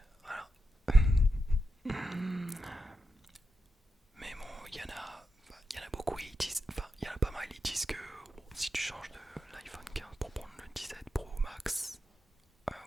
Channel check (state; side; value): normal; both; correlation 0.88